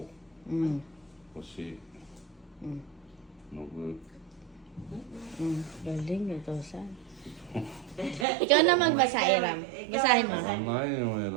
Mm. う。星。 Mm. のぶ。 Galing, ito saan? Ikaw na magbasa, Aram. Basahin mo. ないの選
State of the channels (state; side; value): drops out; left; at 8.2 s